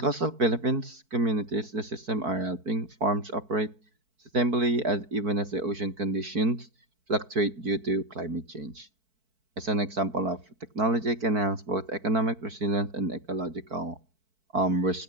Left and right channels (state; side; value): late; left; 4.5 ms